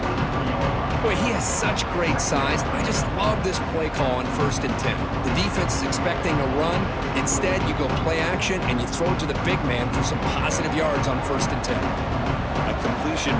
Boy, he has such great size. I just love this play call on 1st and 10. The defense is expecting a run. Instead, you go play action, and you throw it to the big man for some positive yards on 1st and 10. A completion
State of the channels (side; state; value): both; identical; correlation 1.00